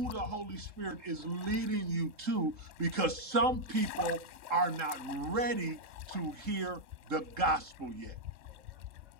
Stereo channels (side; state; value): left; late; 3.8 ms